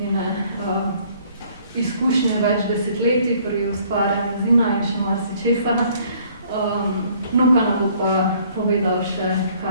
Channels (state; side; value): inverted; both; correlation -0.60